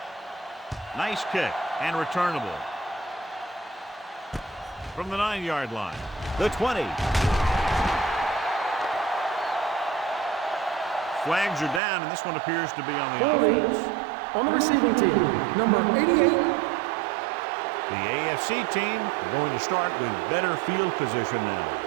Nice kick and returnable. From the 9-yard line. The 20. Flags are down, and this one appears to be on the offense. On the receiving team, number 88. The AFC team are going to start with better field position now.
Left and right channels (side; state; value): left; drops out; at 11.8 s